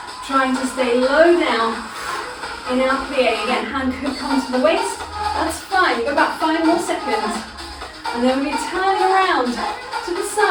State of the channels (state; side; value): identical; both; correlation 1.00